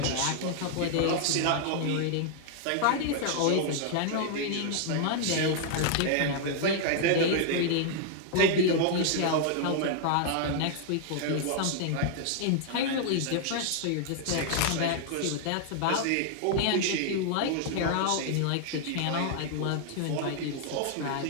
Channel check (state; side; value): different; both; correlation -0.01